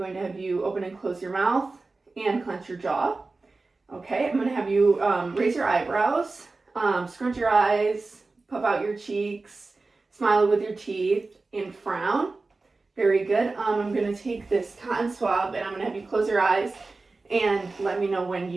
to have you open and close your mouth and clench your jaw. Okay, I'm going to have you raise your eyebrows, scrunch your eyes, puff out your cheeks, smile with your teeth, and frown. Very good. I'm going to take this cotton swab and I'm going to have you close your eyes and let me know when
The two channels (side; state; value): left; quieter; 3.6 dB